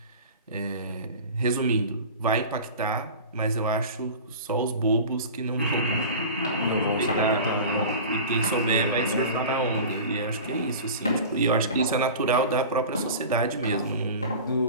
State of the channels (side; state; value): both; inverted; correlation -0.35